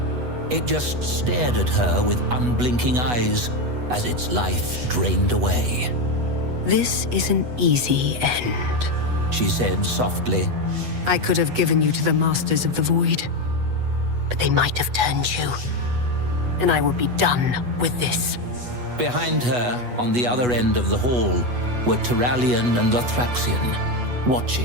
It just stared at her with unblinking eyes as its life drained away. This is an easy end, She said softly. I could have given you to the Masters of the Void, but they might have turned you, and I would be done with this. Behind her, on the other end of the hall, were Turallion and Lothraxion,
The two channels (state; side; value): late; left; 8.2 ms